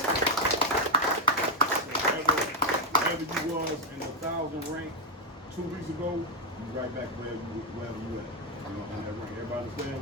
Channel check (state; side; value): normal; both; correlation 0.03